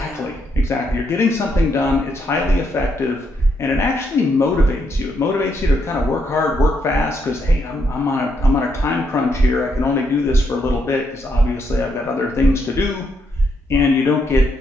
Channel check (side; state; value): both; normal; correlation 0.77